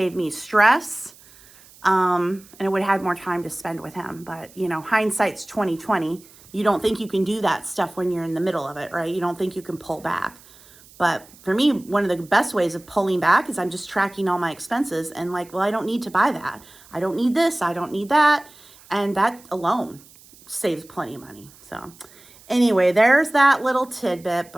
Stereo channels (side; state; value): right; noise; hiss, 24 dB below the sound